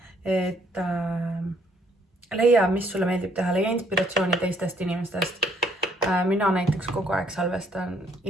Et leia, mis sulle meeldib teha, leia inspiratsiooni teistest inimestest. Mina näiteks kogu aeg salvestan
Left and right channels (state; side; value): normal; both; correlation 0.66